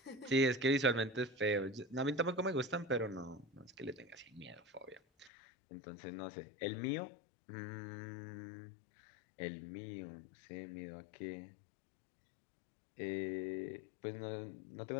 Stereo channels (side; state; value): right; drops out; at 5.3 s